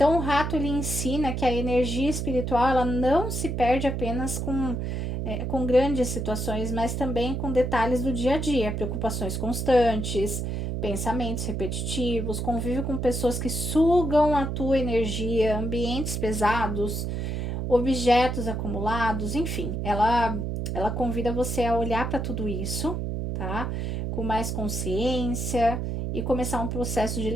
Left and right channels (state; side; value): noise; right; hum, 2 dB below the sound